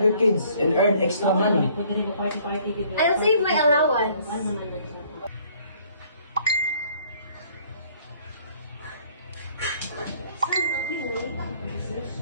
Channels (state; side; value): inverted; both; correlation -0.60